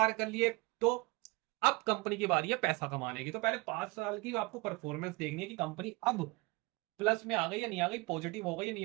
कर लिए, तो अब कंपनी की बारी है पैसा कमाने की। तो पहले 5 साल की आपको परफॉर्मेंस देखनी है कि कंपनी अब प्लस में आ गई या नहीं आ गई, पॉजिटिव हो गई या नहीं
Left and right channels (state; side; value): quieter; left; 24.6 dB